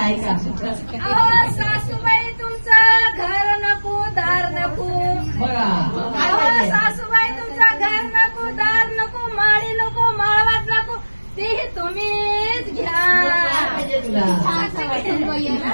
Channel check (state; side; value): inverted; both; correlation -1.00